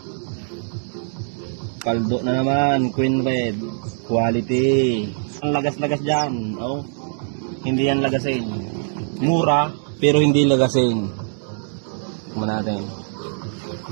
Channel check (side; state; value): left; silent; 64 dB below the other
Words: Kaldo na naman, Queen Red. Quality. Ang lagas-lagas dyan. Oh, hindi yan lagasin. Mura, pero hindi lagasin. Kumain natin.